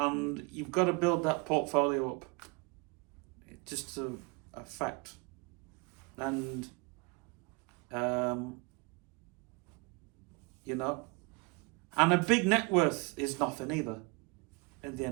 you've got to build that portfolio up. It's just a fact. And and a big net worth is nothing either at the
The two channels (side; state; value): left; quieter; 28.6 dB